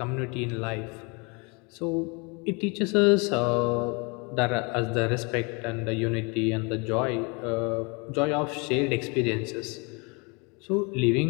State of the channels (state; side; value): quieter; right; 30.9 dB